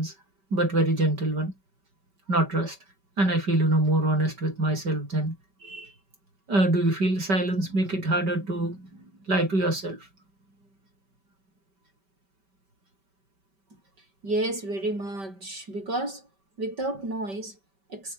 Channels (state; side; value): late; left; 5.2 ms